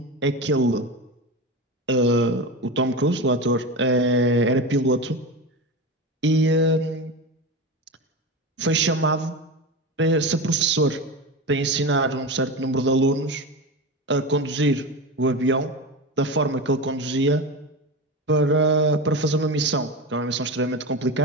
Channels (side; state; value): both; normal; correlation 0.23